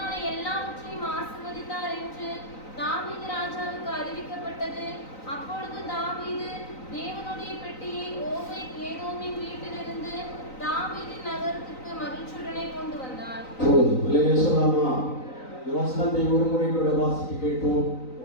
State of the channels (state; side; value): late; right; 3.9 ms